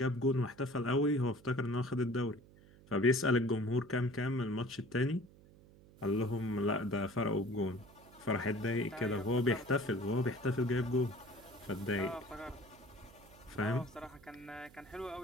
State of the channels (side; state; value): right; noise; hum, 23 dB below the sound